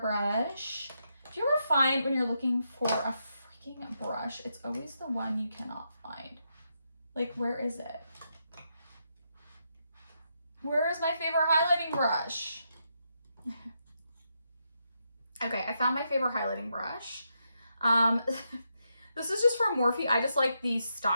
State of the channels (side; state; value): both; inverted; correlation -0.82